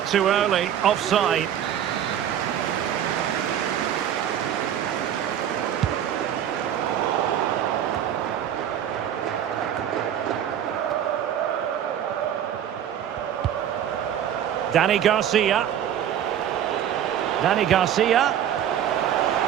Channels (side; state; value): left; quieter; 10.0 dB